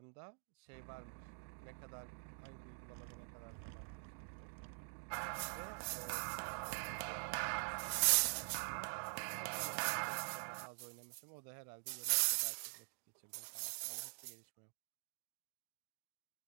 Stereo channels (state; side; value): silent; left; digital silence